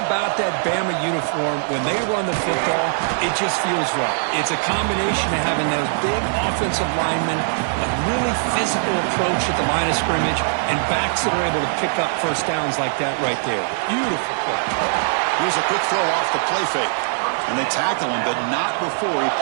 that Bama uniform. When they run the football, it just feels right. It's a combination of having those big offensive linemen, a really physical approach at the line of scrimmage, and backs that are able to pick up first downs like that right there. Beautiful play. Here's a quick throw off the play fake. And they tackle him, but not before he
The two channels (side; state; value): left; silent; digital silence